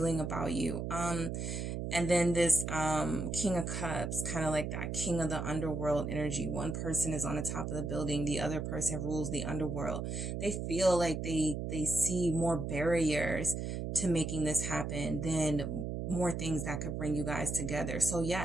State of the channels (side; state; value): right; noise; hum, 3 dB below the sound